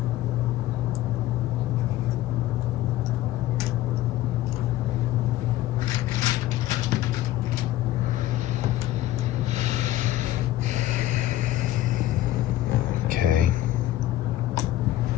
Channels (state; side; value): quieter; right; 14.5 dB